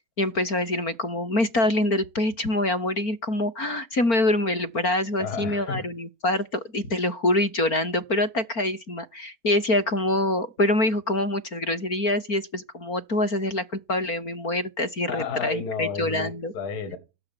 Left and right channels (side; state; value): right; late; 4.4 ms